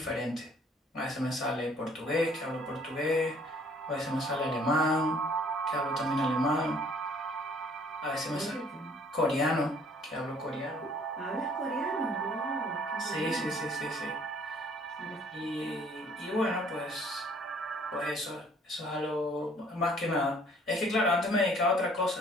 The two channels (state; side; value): normal; both; correlation 0.58